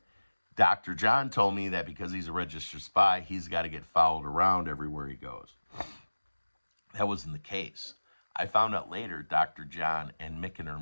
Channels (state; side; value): inverted; both; correlation -1.00